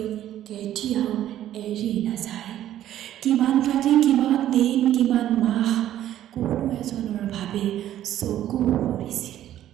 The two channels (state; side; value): quieter; left; 12.2 dB